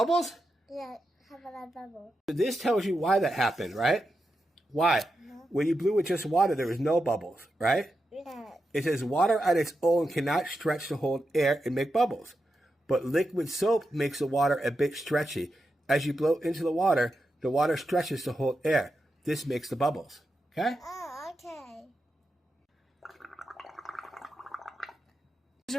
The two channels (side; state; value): both; normal; correlation 0.88